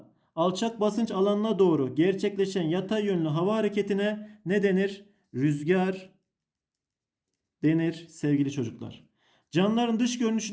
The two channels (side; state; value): both; identical; correlation 1.00